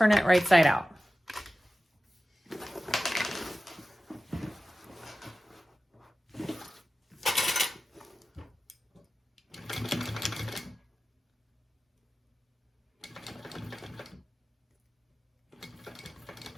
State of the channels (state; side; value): normal; both; correlation 0.95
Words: it right side out.